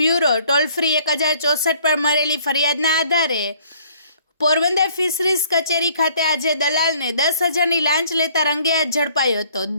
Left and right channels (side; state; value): both; inverted; correlation -0.59